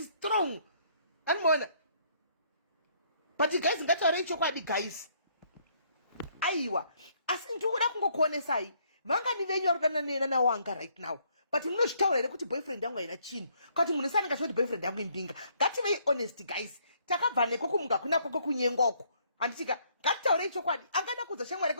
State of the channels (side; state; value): both; inverted; correlation -0.67